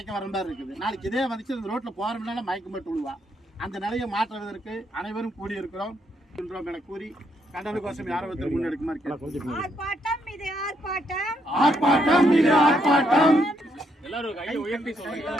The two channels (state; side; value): normal; both; correlation 0.75